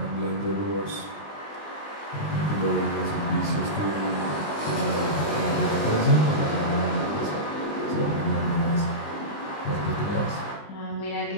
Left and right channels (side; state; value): right; late; 19 ms